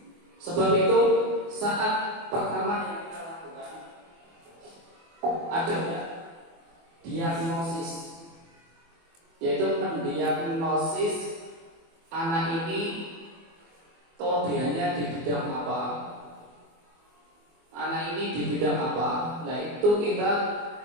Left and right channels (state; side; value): late; left; 24 ms